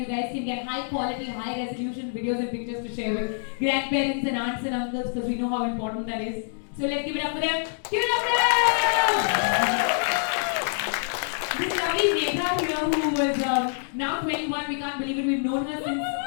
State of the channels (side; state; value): right; silent; digital silence